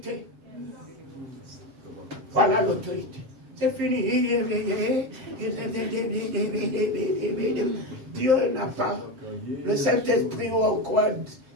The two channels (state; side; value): late; left; 7.5 ms